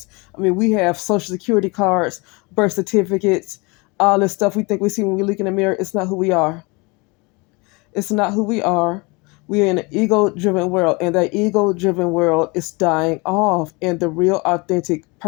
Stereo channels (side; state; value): right; quieter; 27.4 dB